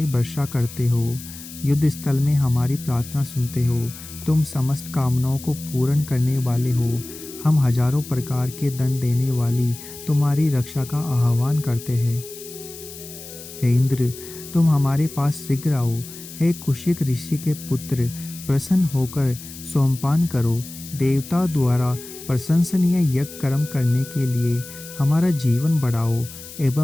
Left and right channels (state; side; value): noise; left; hiss, 15 dB below the sound